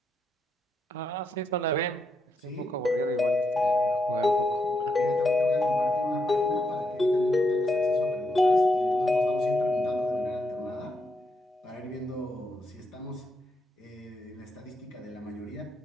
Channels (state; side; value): normal; both; correlation 0.81